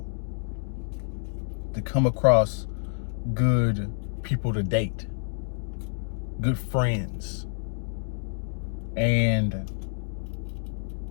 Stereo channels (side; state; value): right; silent; digital silence